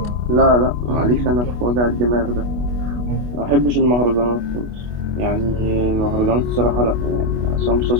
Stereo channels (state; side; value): late; left; 25 ms